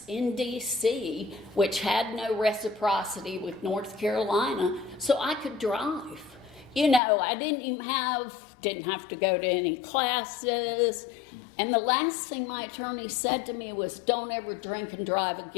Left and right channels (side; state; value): right; drops out; at 7.0 s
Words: in D.C., which had no reciprocity with North Carolina, so I could drive. You know, I didn't have to go to any classes. And the last thing my attorney said to me was, don't ever drink and drive